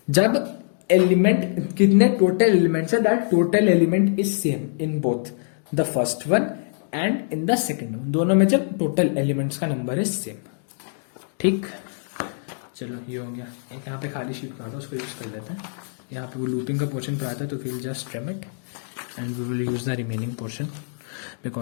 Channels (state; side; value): silent; right; digital silence